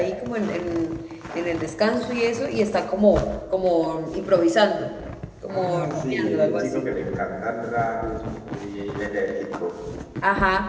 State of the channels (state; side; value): identical; both; correlation 1.00